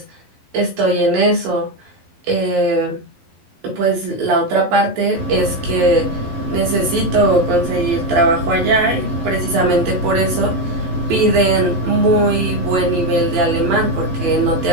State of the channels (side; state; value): left; late; 11 ms